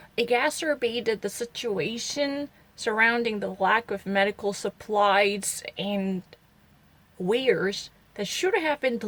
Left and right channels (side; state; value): both; identical; correlation 1.00